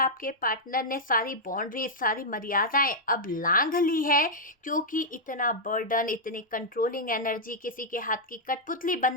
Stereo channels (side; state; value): both; normal; correlation -0.06